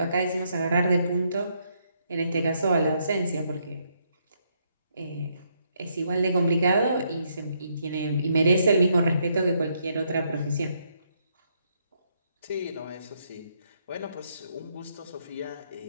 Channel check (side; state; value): both; inverted; correlation -0.75